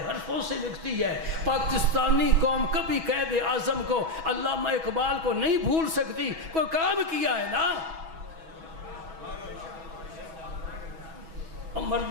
حرفوں سے لکھتی ہے۔ پاکستانی قوم کبھی قائد اعظم کو، علامہ اقبال کو نہیں بھول سکتی، کوئی کام کیا ہے نا،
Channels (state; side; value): late; left; 6.2 ms